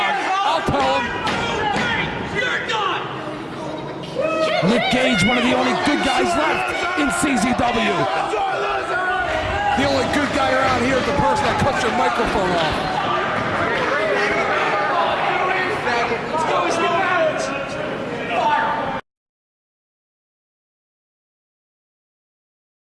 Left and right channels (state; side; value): identical; both; correlation 1.00